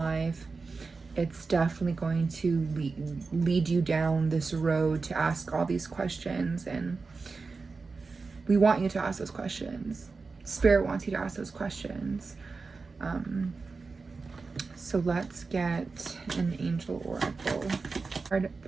it's definitely going to lead you down this road to ask all these questions. And we want you to ask those questions. Spirit wants you to ask those questions. So let's get an angel oracle. Card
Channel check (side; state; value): left; quieter; 4.3 dB